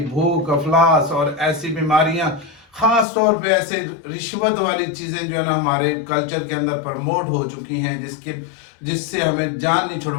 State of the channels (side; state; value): right; drops out; at 3.1 s